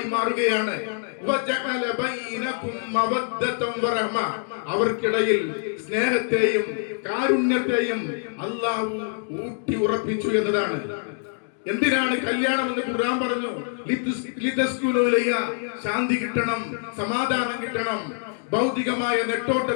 മാറുകയാണ്. വജഅല ബൈനകും മവദ്ദതൻ വറഹ്മ. അവർക്കിടയിൽ സ്നേഹത്തെയും കാരുണ്യത്തെയും അല്ലാഹു ഊട്ടി ഉറപ്പിച്ചു എന്നതാണ്. എന്തിനാണ് കല്യാണം എന്ന് ഖുർആൻ പറഞ്ഞു? ലിതസ്കുനു ഇലൈഹാ, ശാന്തി കിട്ടണം, സമാധാനം കിട്ടണം. ഭൗതികമായ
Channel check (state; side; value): silent; right; 61 dB below the other